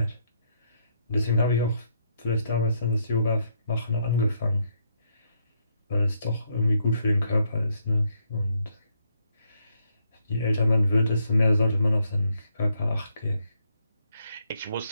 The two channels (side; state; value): both; inverted; correlation -0.74